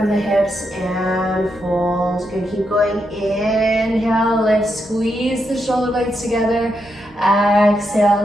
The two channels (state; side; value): normal; both; correlation 0.82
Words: the hips and fold. Good, keep going. Inhale, lift, squeeze the shoulder blades together.